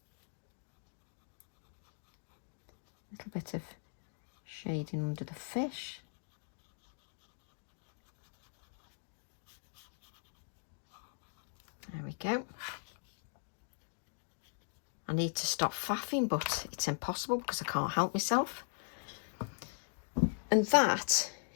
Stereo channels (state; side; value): silent; right; digital silence